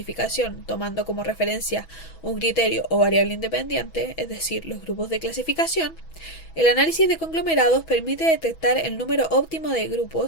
tomando como referencia un criterio o variable independiente, es decir, los grupos de clasificación, el análisis de conglomerados permite detectar el número óptimo de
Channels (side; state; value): right; late; 6.1 ms